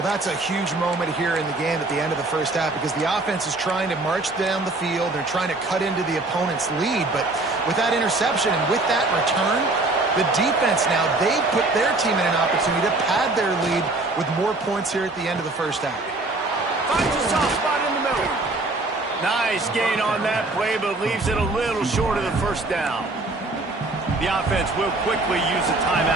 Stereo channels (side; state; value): left; quieter; 3.0 dB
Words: that's a huge moment here in the game at the end of the first half because the offense is trying to march down the field. They're trying to cut into the opponent's lead, but with that interception and with that return, the defense now, they put their team in an opportunity to pad their lead with more points here at the end of the first half. Finds a soft spot in the middle. Nice gain on that play, but leaves it a little short of the first down. The offense will quickly use a